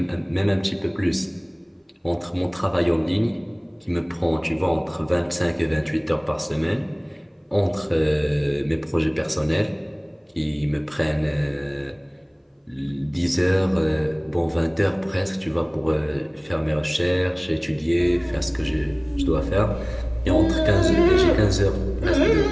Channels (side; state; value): both; identical; correlation 1.00